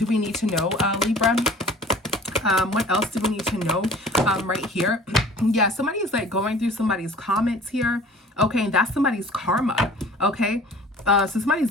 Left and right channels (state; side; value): normal; both; correlation 0.46